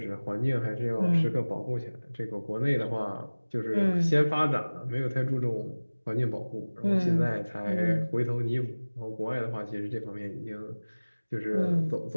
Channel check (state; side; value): inverted; both; correlation -1.00